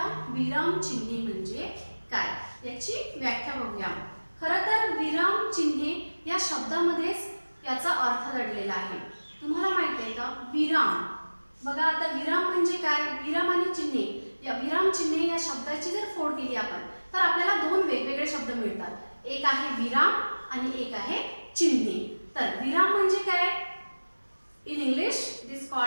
विराम चिन्हे म्हणजे काय, याची व्याख्या बघूया. खरं तर विराम चिन्हे या शब्दामध्येच याचा अर्थ दडलेला आहे. तुम्हाला माहित आहे का विराम? बघा आता विराम म्हणजे काय? विराम आणि चिन्हे, या विराम चिन्हे या शब्दाची जर फोड केली आपण तर आपल्याला दोन वेगवेगळे शब्द मिळतात. एक आहे विराम आणि एक आहे चिन्हे. तर विराम म्हणजे काय? In English it is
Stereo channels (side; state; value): both; inverted; correlation -1.00